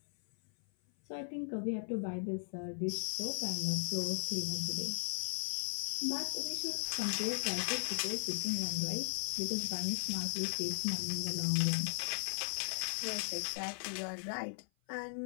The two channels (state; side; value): silent; right; 53 dB below the other